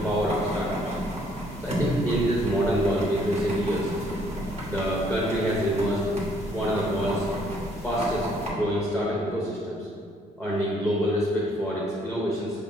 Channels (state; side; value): normal; both; correlation 0.64